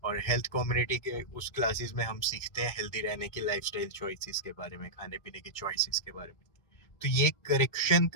और हेल्थ कम्युनिटी के उस क्लासेस में हम सीखते हैं हेल्दी रहने की लाइफस्टाइल चॉइसेस के बारे में, खाने पीने की चॉइसेस के बारे में। तो ये करेक्शन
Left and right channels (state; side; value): late; right; 1.8 ms